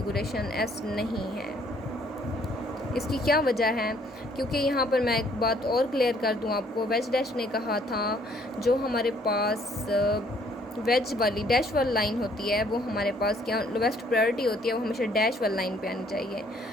S नहीं है। इसकी क्या वजह है? क्योंकि यहाँ पर मैं एक बात और क्लियर कर दूँ आपको, वेज डैश ने कहा था जो हमारे पास वेज वाली डैश वाली लाइन होती है, वो हमारे पास क्या लोवेस्ट प्रायोरिटी होती है, वो हमेशा डैश वाली लाइन पे आनी चाहिए।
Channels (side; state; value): both; normal; correlation 0.63